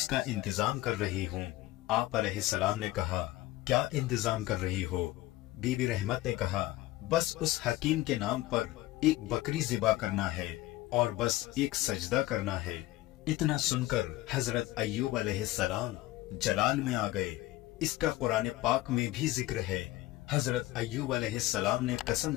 इंतजाम कर रही हूँ। आप अलैहिस्सलाम ने कहा, क्या इंतजाम कर रही हो? बीबी रहमत ने कहा, बस उस हकीम के नाम पर एक बकरी ज़िबा करना है और बस एक सजदा करना है। इतना सुनकर हजरत अय्यूब अलैहिस्सलाम जलाल में आ गए। इसका कुरान पाक में भी जिक्र है। हजरत अय्यूब अलैहिस्सलाम ने कसम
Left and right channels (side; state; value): right; quieter; 17.1 dB